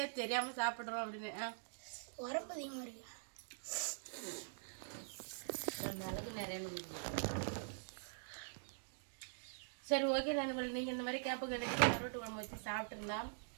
ஏன் தெரியாமல் சாப்பிட்றோம் அப்படின்னு. உரப்பு அதிகமாக இருக்கு. மிளகு நிறைய. சரி, ஓகே நண்பர்கள், நீங்கள் இந்த மாதிரி கேப்பு கிடைச்சி கருவாட்டு குழம்பு வச்சு சாப்பிட்ருந்தா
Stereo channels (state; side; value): silent; left; digital silence